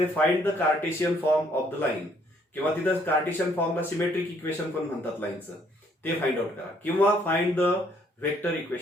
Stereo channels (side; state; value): both; normal; correlation 0.66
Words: find the Cartesian form of the line, किंवा तिथे कार्टेशियन फॉर्मला सिमेट्रिक इक्वेशन पण म्हणतात लाईनचं, ते फाइंड आउट करा, किंवा find the vector